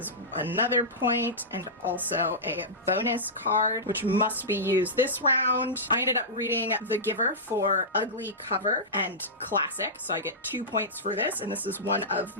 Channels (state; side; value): normal; both; correlation -0.14